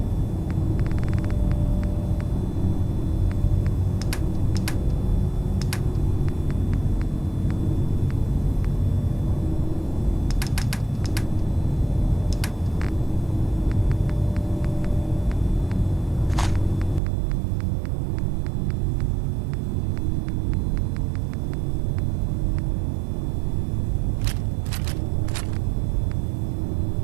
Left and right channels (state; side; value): drops out; left; at 17.0 s